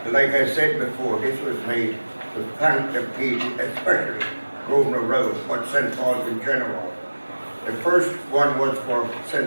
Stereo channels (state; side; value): inverted; both; correlation -1.00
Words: Like I said before, this was made to thank the people, especially Grosvenor Road, but St Paul's in general. The first one was for